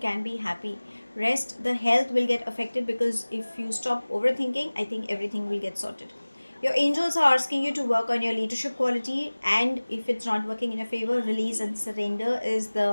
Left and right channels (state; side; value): inverted; both; correlation -1.00